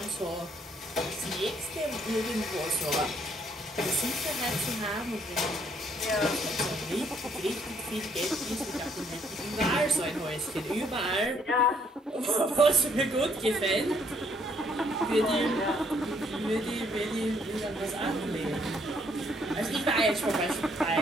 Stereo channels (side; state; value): both; normal; correlation 0.68